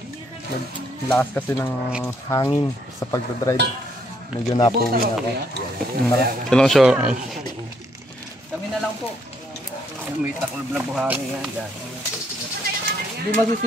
Lakas kasi ng hangin sa pagdadrive. Medyo napuwi na ako. Ilang show? Kami na lang po. May taklob na buhangin yan dyan. Hindi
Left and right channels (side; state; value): both; normal; correlation 0.71